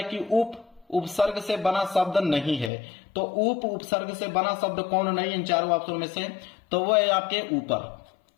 कि उपसर्ग से बना शब्द नहीं है। तो उपसर्ग से बना शब्द कौन नहीं है इन चारों ऑप्शन में से? तो वह है आपके ऊपर,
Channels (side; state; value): right; drops out; at 2.7 s